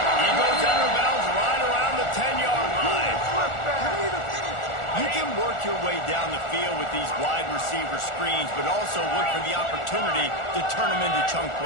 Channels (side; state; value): right; late; 1.4 ms